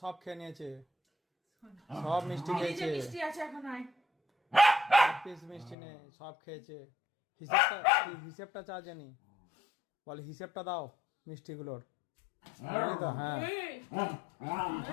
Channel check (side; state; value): right; drops out; at 5.8 s